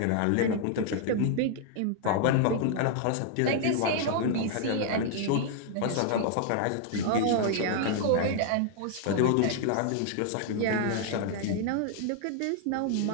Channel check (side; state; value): both; different; correlation 0.00